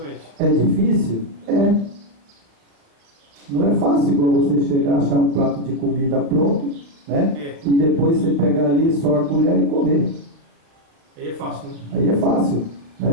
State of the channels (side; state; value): left; late; 36 ms